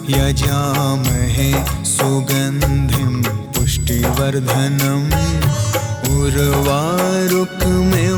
यजामहे सुगन्धिं पुष्टिवर्धनम्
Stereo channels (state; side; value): identical; both; correlation 1.00